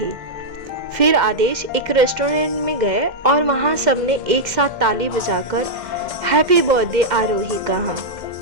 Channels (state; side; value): late; left; 2.1 ms